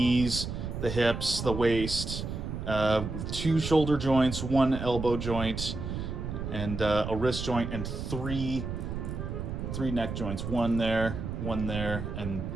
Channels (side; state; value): right; noise; rumble, 5 dB below the sound